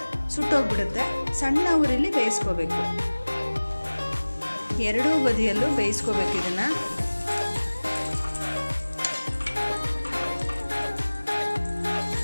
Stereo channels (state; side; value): inverted; both; correlation -1.00